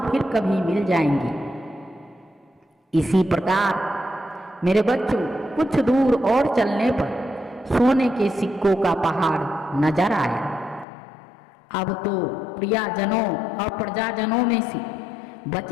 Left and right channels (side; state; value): right; drops out; at 10.9 s